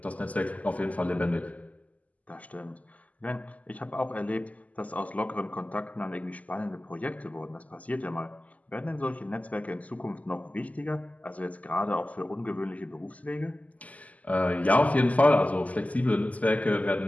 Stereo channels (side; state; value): right; late; 0.074 ms